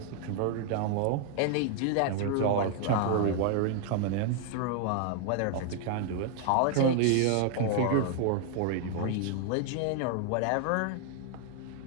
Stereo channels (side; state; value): both; different; correlation 0.00